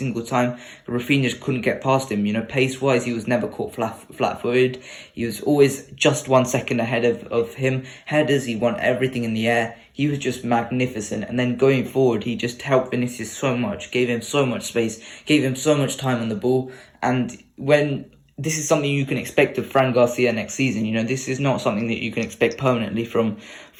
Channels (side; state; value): both; identical; correlation 1.00